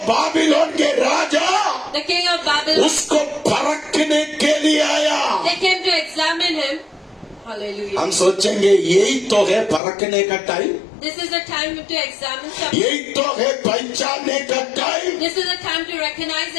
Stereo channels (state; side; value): drops out; right; at 9.8 s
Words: बाबिलोन के राजा the king of Babylon, उसको परखने के लिए आया। they came to examine him. Hallelujah. हम सोचेंगे यही तो है परखने का time, This is the time to examine something. यही तो है पहचानने का time. This is the time to recognize